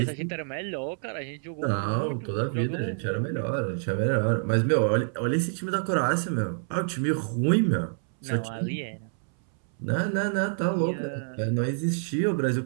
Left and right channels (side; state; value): left; silent; 60 dB below the other